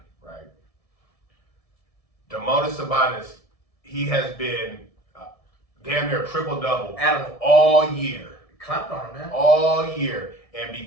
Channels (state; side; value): late; right; 1.7 ms